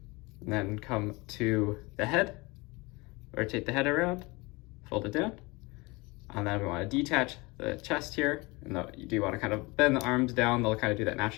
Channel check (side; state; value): right; quieter; 24.7 dB